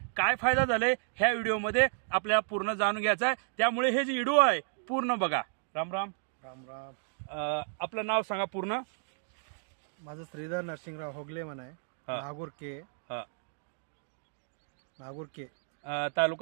काय फायदा झालाय ह्या व्हिडिओमध्ये आपल्याला पूर्ण जाणून घ्यायचं आहे. त्यामुळे हे जे व्हिडिओ आहे पूर्ण बघा. राम राम. राम राम. आपलं नाव सांगा पूर्ण. माझं श्रीधर नरसिंगराव होगले म्हण आहे. नागूर के. नागूर के.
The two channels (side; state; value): left; silent; digital silence